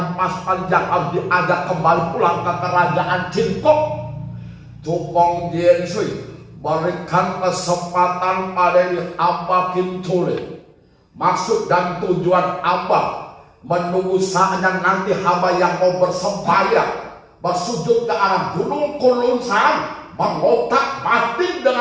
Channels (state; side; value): identical; both; correlation 1.00